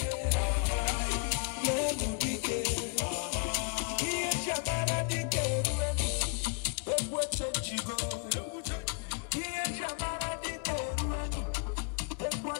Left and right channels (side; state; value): right; quieter; 37.9 dB